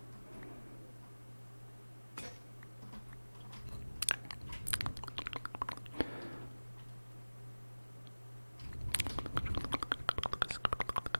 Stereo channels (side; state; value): both; inverted; correlation -1.00